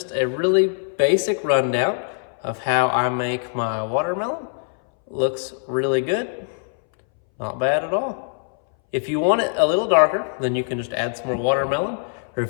a really basic rundown of how I make my watermelon. Looks really good. Not bad at all. If you want it a little darker, then you can just add some more watermelon. Or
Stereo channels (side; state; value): right; silent; 62 dB below the other